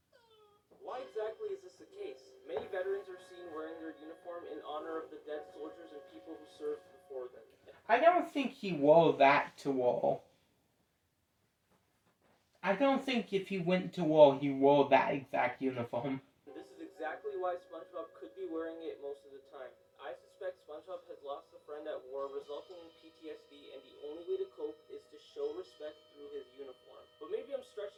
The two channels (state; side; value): identical; both; correlation 1.00